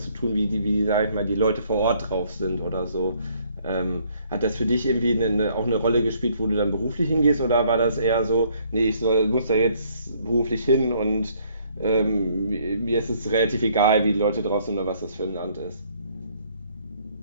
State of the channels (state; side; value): inverted; both; correlation -0.65